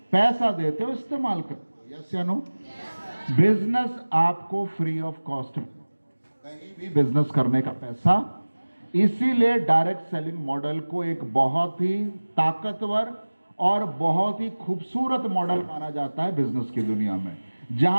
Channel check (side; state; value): both; inverted; correlation -1.00